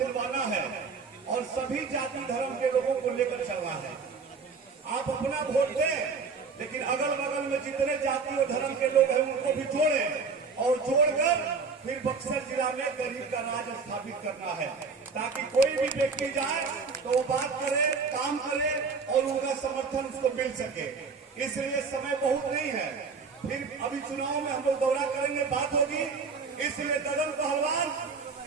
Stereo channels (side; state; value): left; quieter; 4.9 dB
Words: है और सभी जाति धर्म के लोगों को लेकर चलना है। आप अपना वोट दें, लेकिन अगल बगल में जितने जाति और धर्म के लोग हैं उनको भी जोड़ें और जोड़कर फिर बक्सर जिला में गरीब का राज स्थापित करना है, ताकि कोई भी व्यक्ति जाए तो वो बात करे, काम करे और उनका समर्थन उसको मिल सके। इसलिए समय बहुत नहीं है, फिर अभी चुनाव में हम लोग दौरा करेंगे, बात होगी। इसलिए ददन पहलवान